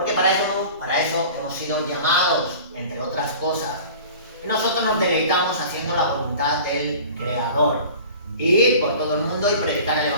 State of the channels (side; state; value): both; inverted; correlation -0.42